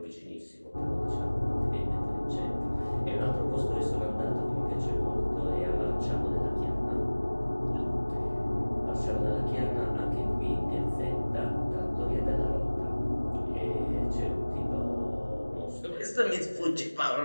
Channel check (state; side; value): inverted; both; correlation -1.00